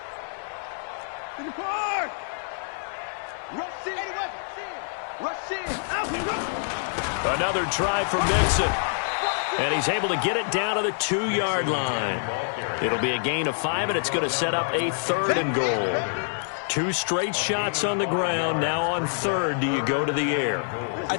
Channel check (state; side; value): silent; right; digital silence